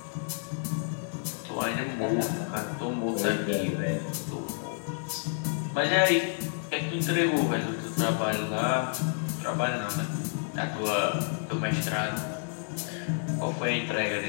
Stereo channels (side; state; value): right; silent; 58 dB below the other